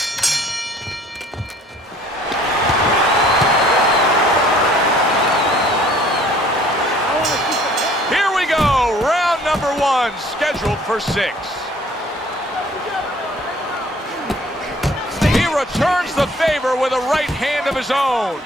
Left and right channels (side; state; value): both; normal; correlation 0.55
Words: Here we go, round number 1, scheduled for 6. He returns the favor with a right hand of his own.